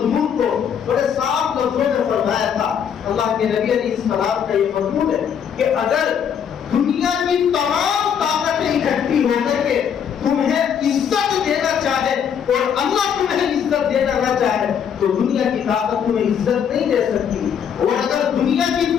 کو بڑے صاف لفظوں میں فرمایا تھا۔ اللہ کے نبی علیہ السلام کا یہ مضمون ہے کہ اگر دنیا کی تمام طاقتیں اکٹھی ہو کر کے تمہیں عزت دینا چاہے اور اللہ تمہیں عزت دینا نہ چاہے تو دنیا کی طاقت تمہیں عزت نہیں دے سکتی، اور اگر دنیا کی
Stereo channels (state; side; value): quieter; right; 8.0 dB